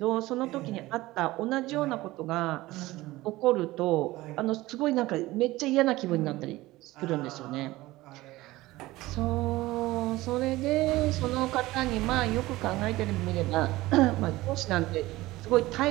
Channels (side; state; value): left; quieter; 18.4 dB